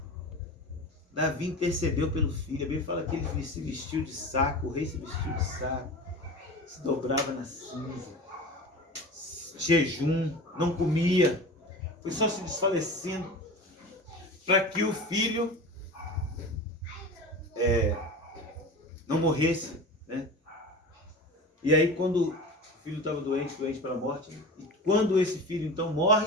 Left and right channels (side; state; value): both; normal; correlation 0.32